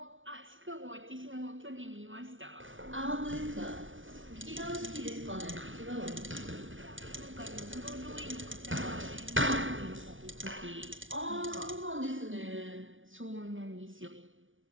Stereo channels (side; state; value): left; late; 0.57 ms